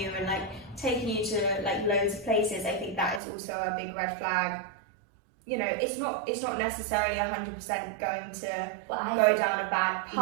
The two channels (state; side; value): drops out; left; at 3.2 s